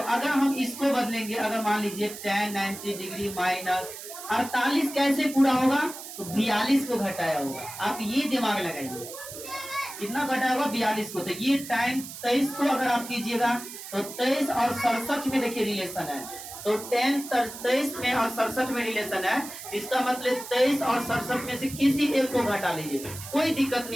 हम इसको बदलेंगे, अगर मान लीजिए tan 90 डिग्री माइनस 48 कैसे पूरा होगा, तो 42 को घटाया होगा। आप ये दिमाग लगाइए, कितना घटाया होगा, 42 को। तो ये tan 23 को अगर आप कीजिएगा तो 23 और 67 में देखिए रिलेशन है, तो tan 23 में और 67 में रिलेशन है। इसका मतलब 23 और 67 में से किसी एक को घटा लीजिए, कोई दिक्कत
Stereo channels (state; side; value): noise; right; hiss, 12 dB below the sound